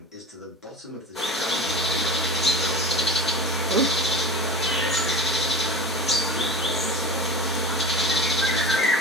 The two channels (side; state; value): both; normal; correlation 0.30